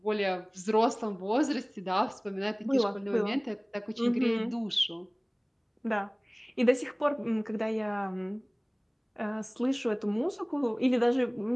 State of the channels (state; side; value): identical; both; correlation 1.00